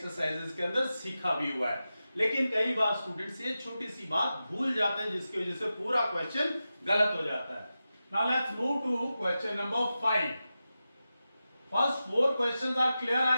के अंदर सीखा भी हुआ है, लेकिन कई बार स्टूडेंट्स ये छोटी सी बात भूल जाते हैं जिसकी वजह से पूरा क्वेश्चन गलत हो जाता है। Now let's move to question number 5। First 4 questions are clear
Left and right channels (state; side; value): inverted; both; correlation -0.92